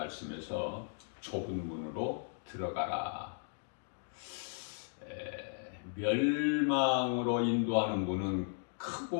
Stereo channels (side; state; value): right; silent; digital silence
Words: 좁은 문으로 들어가라. 멸망으로 인도하는 문은